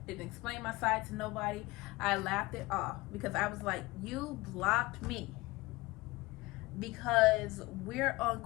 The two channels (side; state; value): right; quieter; 21.3 dB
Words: Didn't explain my side to nobody. I laughed it off because I was like, you blocked me because we're on